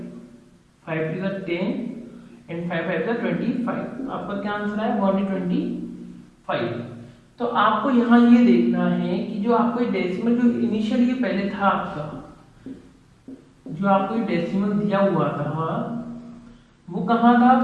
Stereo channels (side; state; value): both; identical; correlation 1.00